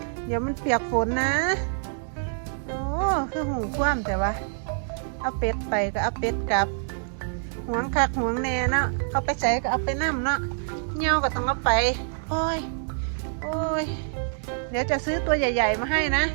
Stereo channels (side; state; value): left; silent; digital silence